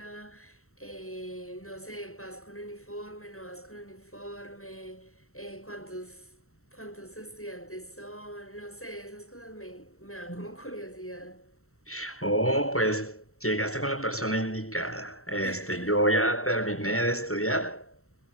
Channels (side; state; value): right; late; 0.63 ms